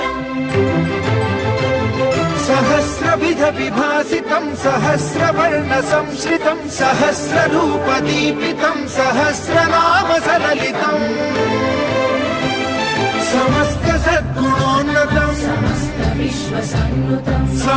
सहस्रविध विभासितं सहस्रवर्णसंश्रितं सहस्ररूपदीपितं सहस्रनाम सललितम् समस्त सद्गुणोन्नतं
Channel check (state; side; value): identical; both; correlation 1.00